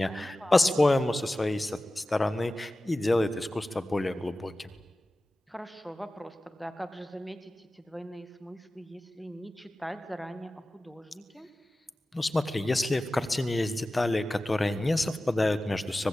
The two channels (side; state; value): both; normal; correlation 0.96